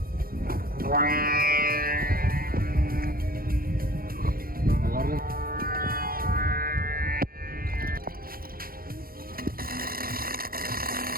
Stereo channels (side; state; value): left; late; 0.42 ms